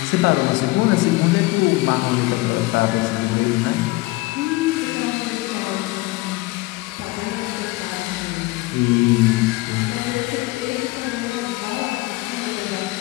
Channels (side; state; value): right; quieter; 21.4 dB